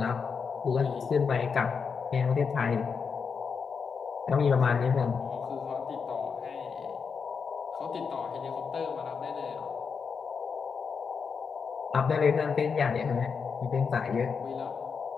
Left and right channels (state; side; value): quieter; right; 5.8 dB